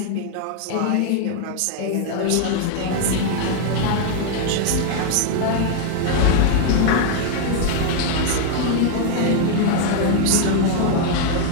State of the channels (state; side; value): different; both; correlation 0.00